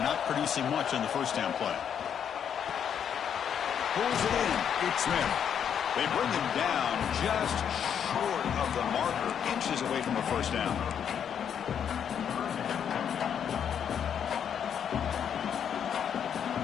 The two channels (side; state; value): right; quieter; 8.3 dB